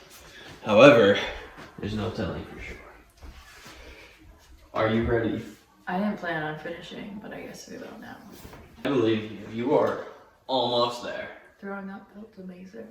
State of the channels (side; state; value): both; identical; correlation 1.00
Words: However, there's no telling for sure. Are you ready? I didn't plan on finishing, but I guess we will now. I believe you. You are almost there. Throwing up felt